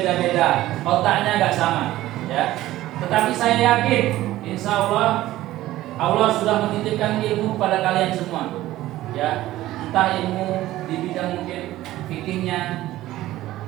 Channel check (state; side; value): quieter; left; 15.5 dB